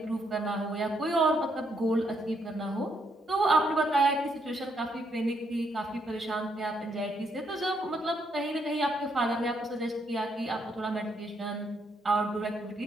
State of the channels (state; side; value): normal; both; correlation 0.75